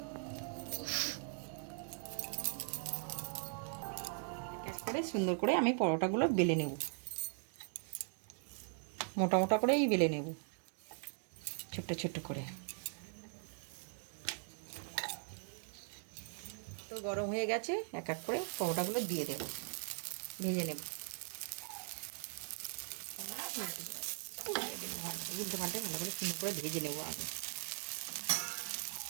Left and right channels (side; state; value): left; silent; 51 dB below the other